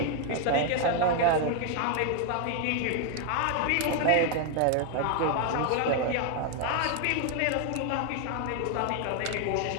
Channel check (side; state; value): both; different; correlation 0.00